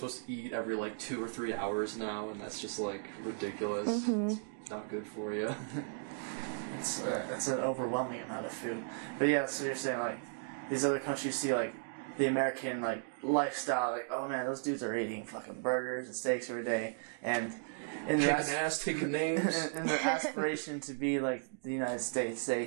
to eat every, like, 2 or 3 hours now, and that's just, like, ridiculous. Mm-hmm. It's not good for you. It's an overwhelming amount of food. But yeah, so you're saying, like, these other countries see, like, the American, like, lifestyle, like, oh man, those dudes are eating fucking burgers and steaks every day, and in taking names, and their aspiration to be like the United States,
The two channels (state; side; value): silent; left; digital silence